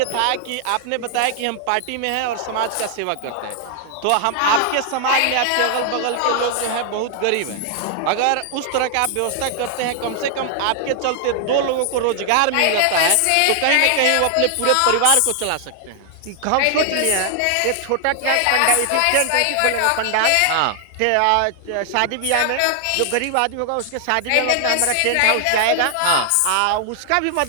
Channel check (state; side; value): different; both; correlation 0.00